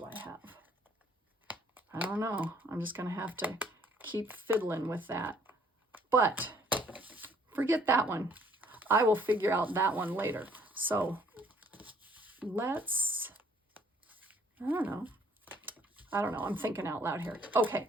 I have? I don't know. I'm just going to have to keep fiddling with that. But forget that one. I will figure out that one later. So let's, I don't know. I'm thinking out loud here. Okay,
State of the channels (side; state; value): both; normal; correlation 0.62